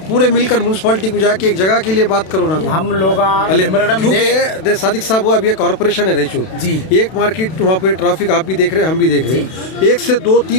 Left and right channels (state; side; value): late; right; 32 ms